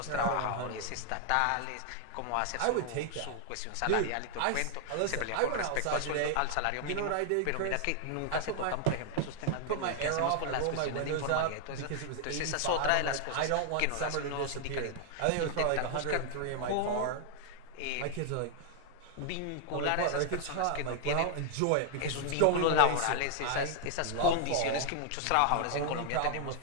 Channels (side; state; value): both; different; correlation 0.00